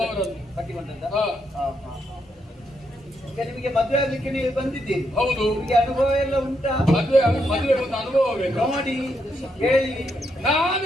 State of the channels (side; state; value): both; normal; correlation 0.79